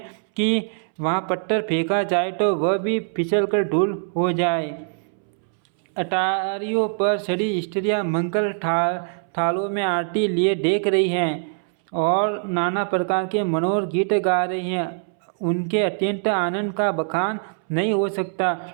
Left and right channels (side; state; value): left; silent; 63 dB below the other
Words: कि वहाँ पत्थर फेंका जाए तो वह भी फिसलकर धूल हो जाए। अटारियों पर सड़ी स्त्रियां मंगल थालों में आरती लिए देख रही हैं और नाना प्रकार के मनोहर गीत गा रही हैं। उनके अत्यंत आनंद का बखान नहीं हो सकता।